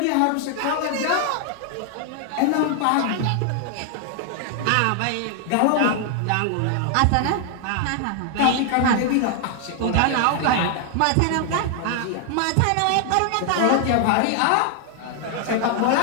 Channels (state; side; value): different; both; correlation 0.00